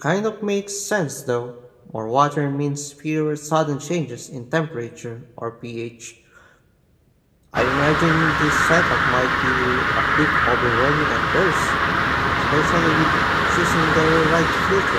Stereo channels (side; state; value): both; identical; correlation 1.00